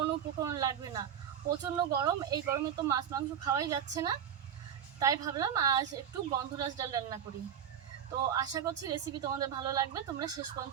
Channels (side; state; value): left; quieter; 8.8 dB